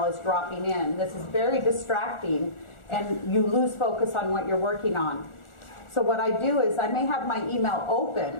is dropping in. This is very distracting, and you lose focus on what you're working on. So what I do is I may have my email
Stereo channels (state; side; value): late; right; 1.4 ms